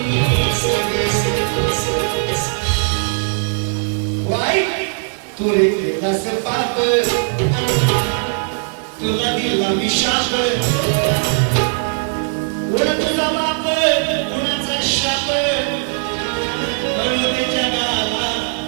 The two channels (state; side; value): silent; left; 59 dB below the other